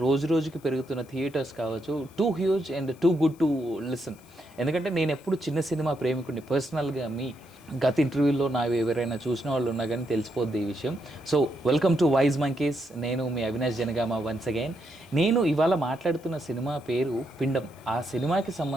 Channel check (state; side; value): noise; left; hiss, 27 dB below the sound